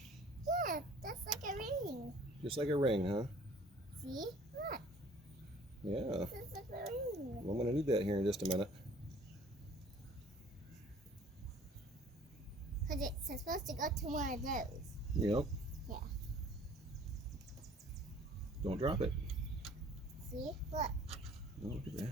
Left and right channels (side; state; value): both; normal; correlation 0.52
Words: Yeah, that's like a ring. Just like a ring, huh? See? Look, Yeah. this is like a ring. Well, I'm going to need that here in just a minute. Because it's supposed to go to one of those. Yep. Yeah. Don't drop it. See? Look. Oh, look at